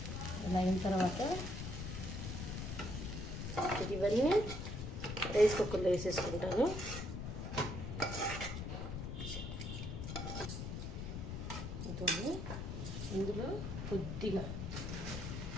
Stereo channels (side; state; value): left; noise; rumble, 5 dB below the sound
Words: ఇలా అయిన తర్వాత ఇవన్నీ రైస్ కుక్కర్లో వేసేసుకుంటాను. ఇందులో కొద్దిగా